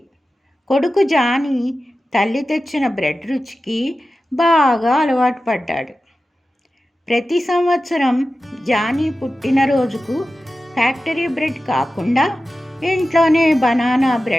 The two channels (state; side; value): normal; both; correlation 0.94